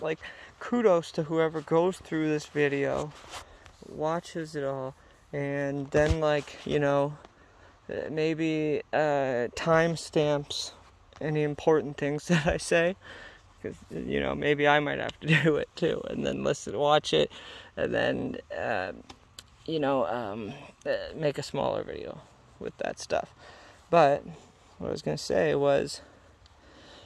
kudos to whoever goes through this video, watches it all, and then maybe timestamps any important things that I say, because maybe I might have to do it too, and then watch it, and then make a smaller video with that stuff. But what I was gonna say was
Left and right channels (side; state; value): both; identical; correlation 1.00